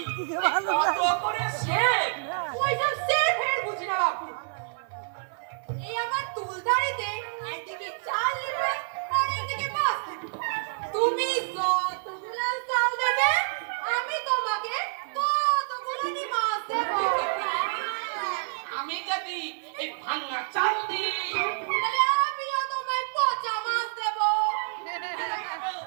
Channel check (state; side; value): silent; left; 59 dB below the other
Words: কত করে সেফ? ওইসব সেফ হেড বুঝি না বাপু। এই আমার তুলদারিতে একদিকে চাল নেবে আর একদিকে মাছ নেবে। তুমি যতগুলো চাল দেবে আমি তোমাকে ততগুলো মাছ দেবো। আমি যদি এই ভাঙা চাল দিই তাহলে আমিও তোমায় পচা মাছ দেবো।